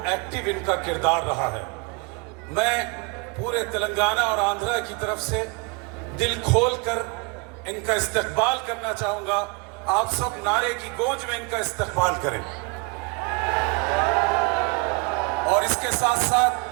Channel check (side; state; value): left; quieter; 29.4 dB